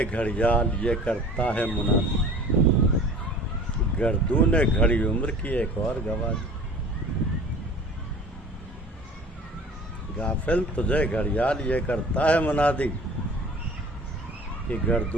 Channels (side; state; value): both; normal; correlation 0.44